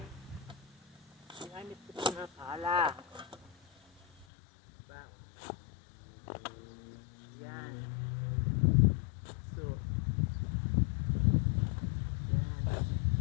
ginamit ko ito ng pala. Diba? Yan. So, yan.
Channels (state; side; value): drops out; right; at 4.2 s